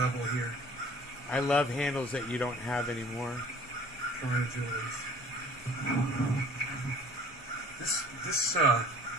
here. I love handles that you don't have anymore. This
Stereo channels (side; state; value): both; normal; correlation 0.50